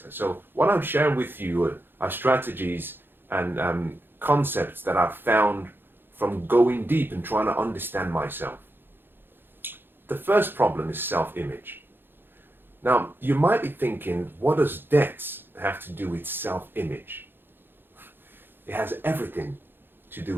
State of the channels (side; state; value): left; late; 0.10 ms